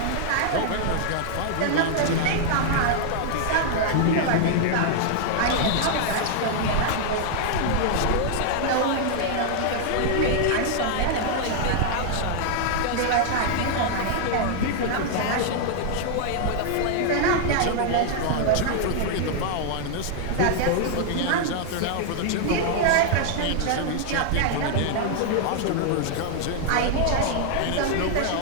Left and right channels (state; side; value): different; both; correlation 0.00